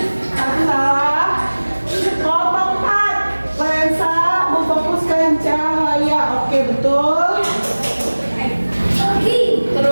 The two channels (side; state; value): both; inverted; correlation -1.00